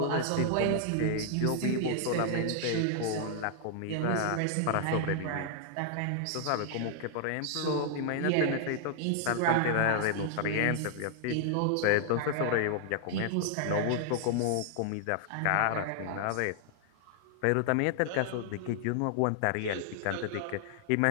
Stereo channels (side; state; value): both; different; correlation -0.01